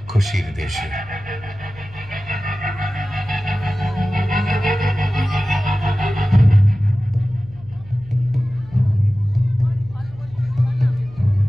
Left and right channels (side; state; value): right; noise; hum, 21 dB below the sound